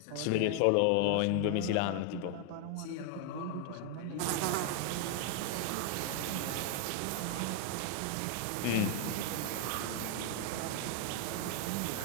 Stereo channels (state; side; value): different; both; correlation 0.00